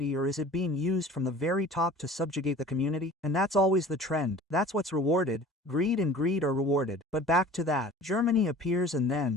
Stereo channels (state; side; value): normal; both; correlation 0.44